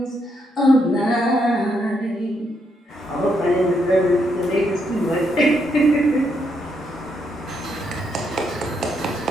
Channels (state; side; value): normal; both; correlation 0.77